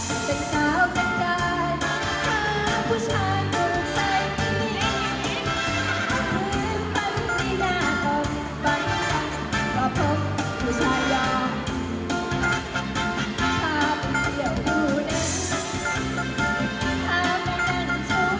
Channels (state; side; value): identical; both; correlation 1.00